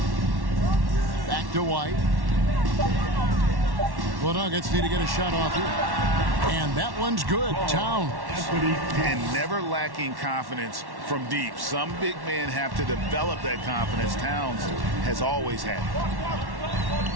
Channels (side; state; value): left; late; 1.1 ms